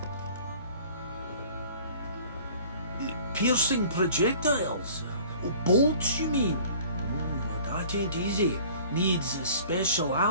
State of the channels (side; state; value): both; inverted; correlation -0.48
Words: Piercing projectiles? Bolts, you mean? That ain't easy. Needs a special